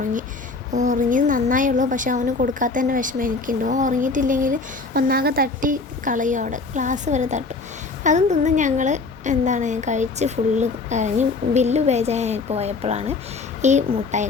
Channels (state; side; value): quieter; right; 4.0 dB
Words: ഉറങ്ങിയത് നന്നായുള്ളൂ. പക്ഷെ അവന് കൊടുക്കാത്തതിൻ്റെ വിഷമം എനിക്കുണ്ട്. ഉറങ്ങിയിട്ടില്ലെങ്കിൽ ഒന്നാകെ തട്ടി കളയും. അവിടെ ഗ്ലാസ് വരെ തട്ടും. അതും തിന്ന് ഞങ്ങൾ കഴിച്ച് ഫുള്ള് കഴിഞ്ഞ് ബില്ല് പേജായി പോയപ്പോഴാണ് ഈ മുട്ടായി